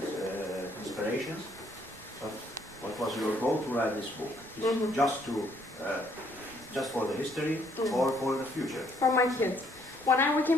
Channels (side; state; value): right; noise; rumble, 23 dB below the sound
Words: inspirations, but what was your goal to write this book? Is just for the history or for the future? For my kids. When we